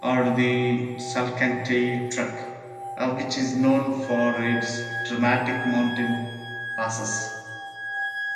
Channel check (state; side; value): identical; both; correlation 1.00